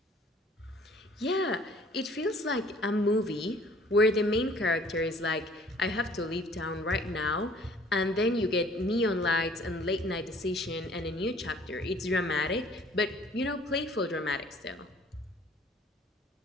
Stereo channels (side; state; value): both; normal; correlation 0.55